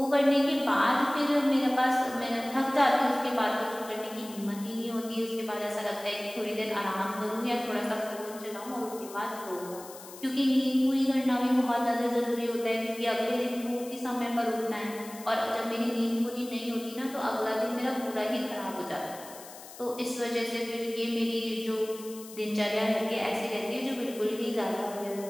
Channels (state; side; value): noise; left; hiss, 16 dB below the sound